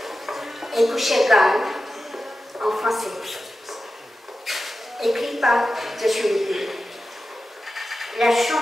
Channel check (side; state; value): both; normal; correlation 0.93